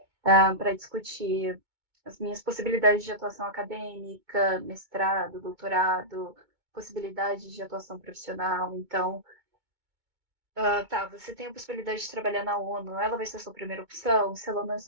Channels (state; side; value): late; left; 2.2 ms